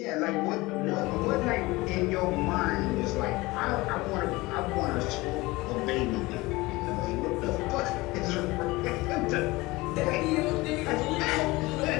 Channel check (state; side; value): quieter; right; 21.4 dB